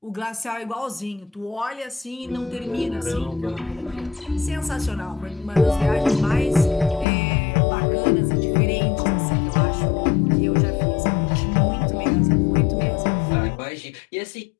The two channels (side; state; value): right; drops out; at 7.1 s